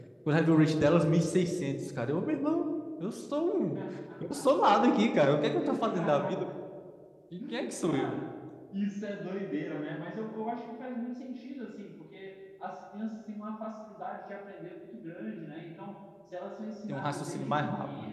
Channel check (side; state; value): both; identical; correlation 1.00